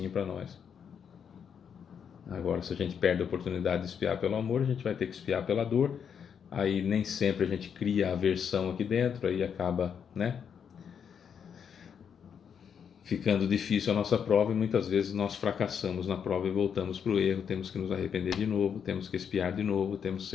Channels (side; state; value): right; quieter; 7.5 dB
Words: para nós. Agora, se a gente perde a oportunidade de expiar pelo amor, a gente vai ter que expiar pela dor. Aí nem sempre a gente cria aversão aqui dentro, aí acaba, ficando difícil a nossa prova, e muitas vezes nós fracassamos na prova e voltamos para o erro. Temos que nos arrepender de novo, temos que expiar de novo, temos que